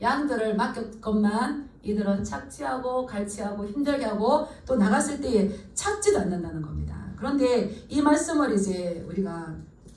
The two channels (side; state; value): both; identical; correlation 1.00